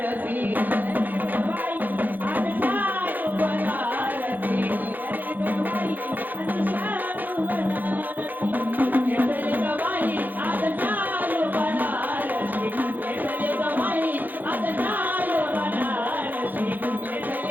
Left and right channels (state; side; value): late; left; 0.085 ms